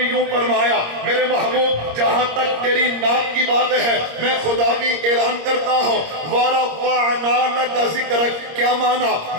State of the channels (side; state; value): left; late; 26 ms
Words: یوں فرمایا میرے محبوب جہاں تک تیری نام کی بات ہے میں خدا بھی اعلان کرتا ہوں وَرَفَعْنَا لَكَ ذِكْرَكَ۔ کیا مانا